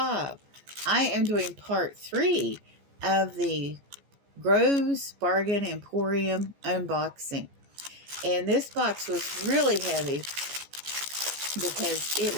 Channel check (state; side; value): late; left; 14 ms